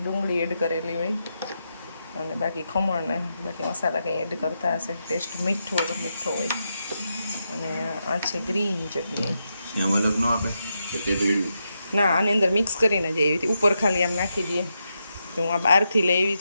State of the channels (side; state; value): both; inverted; correlation -0.85